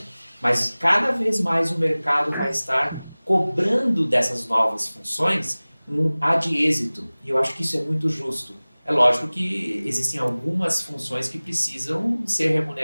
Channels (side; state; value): both; inverted; correlation -1.00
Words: Mas cada vez mais o mercado vai estar cobrando dessas novas funções um ad êxito, e eu acho que isso é muito justo. É lógico que existem algumas funções que precisam ser